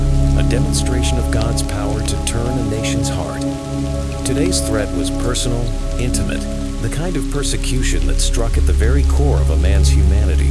a demonstration of God's power to turn a nation's heart. Today's threat was personal, intimate, the kind of persecution that struck at the very core of a man's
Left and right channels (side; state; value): both; identical; correlation 1.00